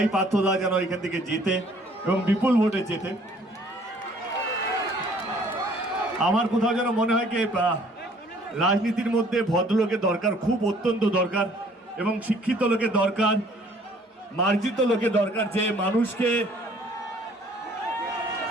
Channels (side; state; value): both; normal; correlation 0.58